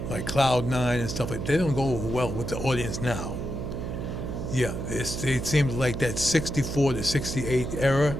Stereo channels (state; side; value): noise; right; hum, 5 dB below the sound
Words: like Cloud Nine and stuff like they don't go well with the audience now. Yeah, it seems like that 64 to 68 era,